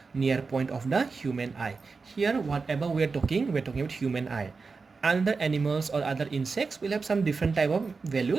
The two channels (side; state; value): left; quieter; 4.5 dB